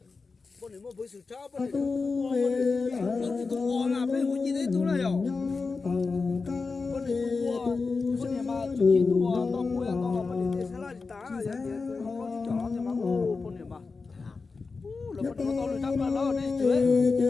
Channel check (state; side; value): quieter; right; 4.3 dB